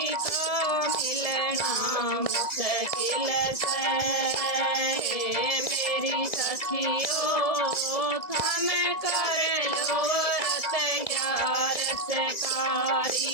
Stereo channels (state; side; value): late; right; 1.9 ms